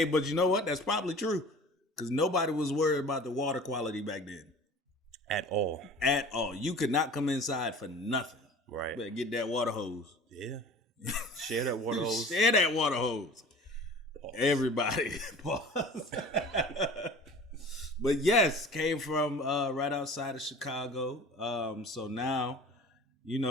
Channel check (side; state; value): both; normal; correlation 0.42